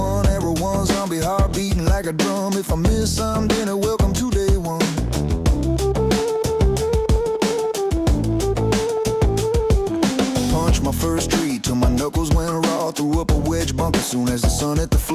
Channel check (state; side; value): identical; both; correlation 1.00